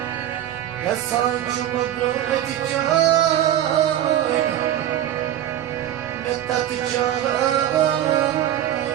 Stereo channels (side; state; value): left; quieter; 11.7 dB